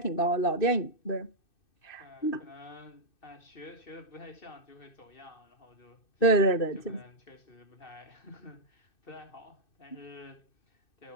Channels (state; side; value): late; right; 2.6 ms